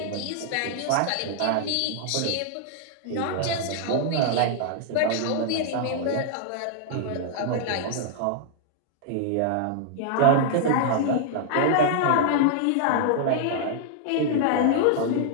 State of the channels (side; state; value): both; different; correlation -0.01